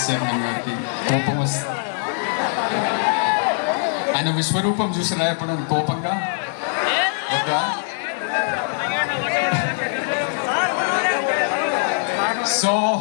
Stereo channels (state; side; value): silent; right; digital silence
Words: chairman గారికి కోపం వస్తుంది. ఆయన విశ్వరూపం చూసినా ఎప్పుడు కోపంగా ఒక సో